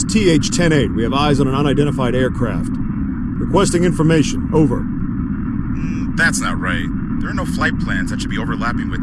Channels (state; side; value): identical; both; correlation 1.00